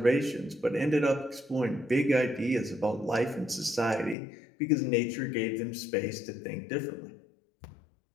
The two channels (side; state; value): right; drops out; at 4.2 s